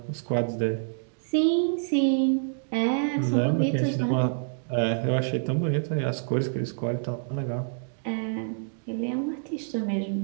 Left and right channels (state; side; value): silent; left; digital silence